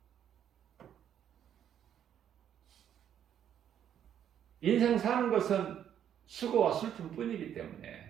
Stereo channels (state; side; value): quieter; left; 9.6 dB